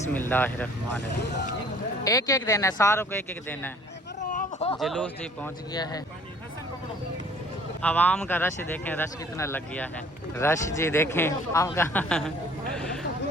एक एक देना है, सारों को एक एक देना है। जुलूस जी पहुँच गया है। आवाम का रश देखें, रश कितना लग गया है। रश जी देखें आवाम का।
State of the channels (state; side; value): normal; both; correlation 0.55